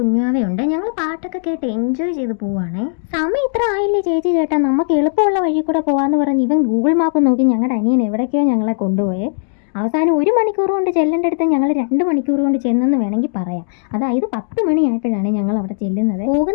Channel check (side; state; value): right; silent; digital silence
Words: ഞങ്ങൾ പാട്ടൊക്കെ കേട്ട് എൻജോയ് ചെയ്ത് പോവാണേ. സമയം ഇത്ര ആയില്ലേ ചേച്ചി ചേട്ടാ, നമുക്ക് എളുപ്പമുള്ള വഴി കൂടെ പോവാന്ന് പറഞ്ഞ് ഇവൻ ഗൂഗിൾ മാപ്പ് നോക്കി ഞങ്ങളുടെ അനിയൻ എവിടേക്കോ ഞങ്ങളെ കൊണ്ടുപോയേ. അവസാനം 1 മണിക്കൂർ കൊണ്ട് ചെല്ലേണ്ടടുത്ത് ഞങ്ങൾ 2 മണിക്കൂർ കൊണ്ട് ചെന്നെന്ന് വേണമെങ്കിൽ പറയാം. അതായത് 10 മണിയായപ്പോഴാണ് ഞങ്ങൾ അവിടെ ചെല്ലുന്നത്.